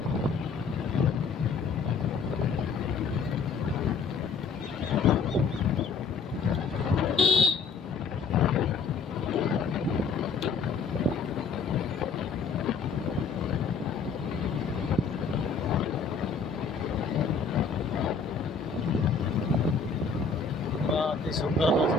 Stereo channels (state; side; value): quieter; right; 5.1 dB